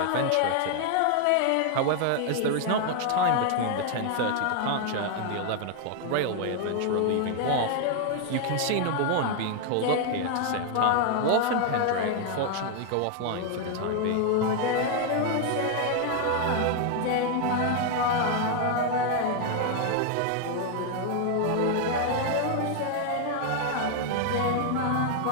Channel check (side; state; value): both; different; correlation 0.00